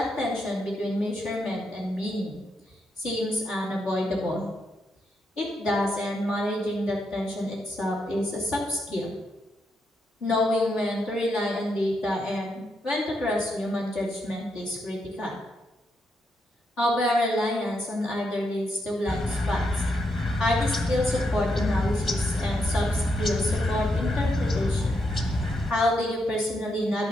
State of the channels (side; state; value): both; normal; correlation 0.80